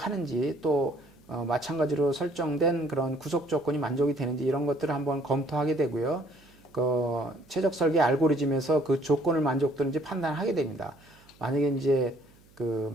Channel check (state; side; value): noise; right; hum, 28 dB below the sound